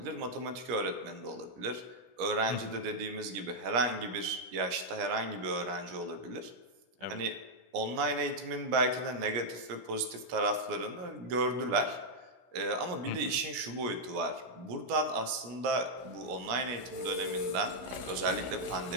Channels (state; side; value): late; left; 17 ms